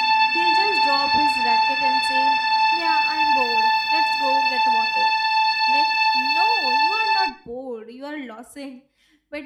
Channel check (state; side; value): identical; both; correlation 1.00